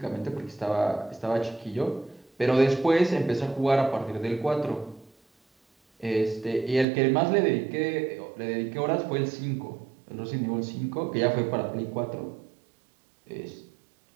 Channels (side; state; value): left; drops out; at 6.9 s